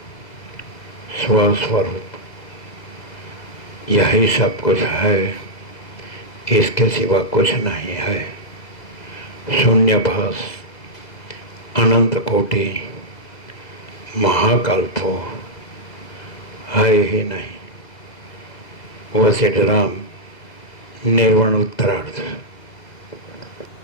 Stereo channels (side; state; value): right; late; 2.0 ms